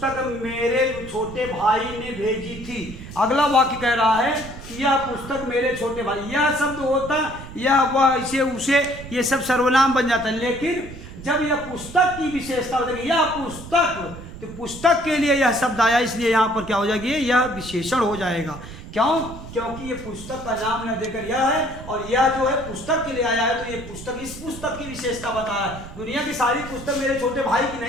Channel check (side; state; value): right; noise; rumble, 13 dB below the sound